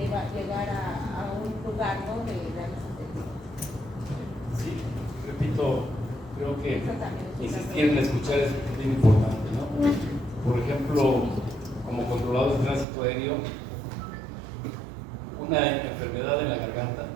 llegar a un lugar, ¿no?, de darles atención. Sí, repito, creo que insistir en escuchar es bien importante, ¿no? Por ejemplo, como controladores de tránsito aéreo, una enfermedad en la garganta,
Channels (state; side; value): drops out; left; at 12.9 s